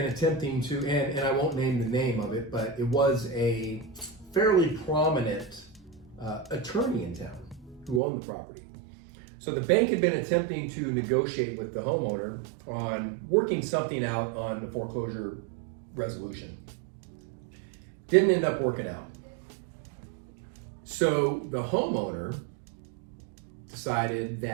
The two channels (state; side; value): drops out; left; at 8.0 s